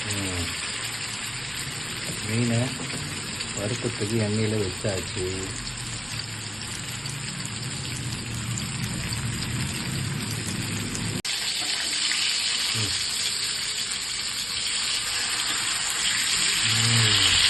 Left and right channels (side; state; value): both; identical; correlation 1.00